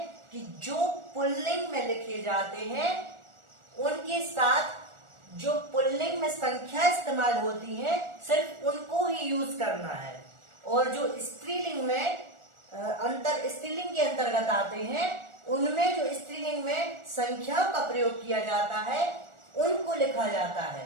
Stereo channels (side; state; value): left; late; 1.4 ms